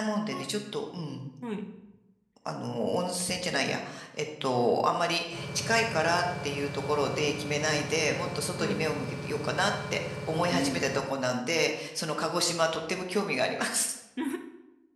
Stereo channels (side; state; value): both; identical; correlation 1.00